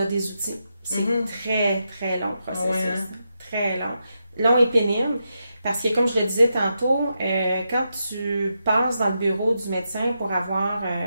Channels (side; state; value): both; inverted; correlation -0.85